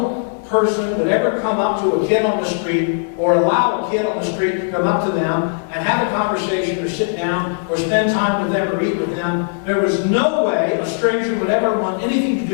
person would ever come up to a kid on the street or allow a kid on the street to come up to them and have a conversation or sit down or spend time with them or eat with them. There was no way a stranger would ever want anything to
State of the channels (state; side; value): silent; right; 67 dB below the other